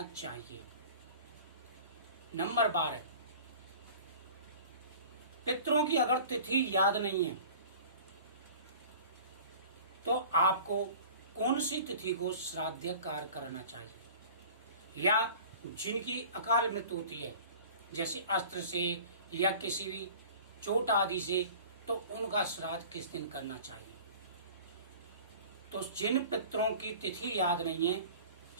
चाहिए। नंबर 12, पितरों की अगर तिथि याद नहीं है तो आपको कौन सी तिथि को श्राद्ध कार्य करना चाहिए? या जिनकी अकाल मृत्यु होती है जैसे अस्त्र से या किसी भी चोट आदि से, तो उनका श्राद्ध किस दिन करना चाहिए? तो जिन पितरों की तिथि याद नहीं है,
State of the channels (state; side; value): inverted; both; correlation -0.43